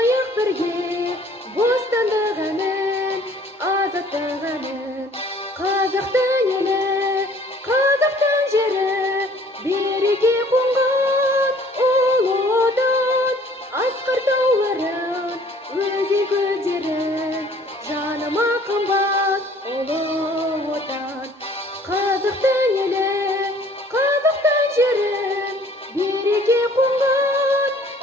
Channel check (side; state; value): both; normal; correlation 0.55